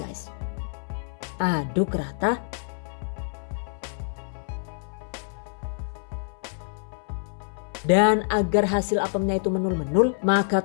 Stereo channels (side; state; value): right; silent; 58 dB below the other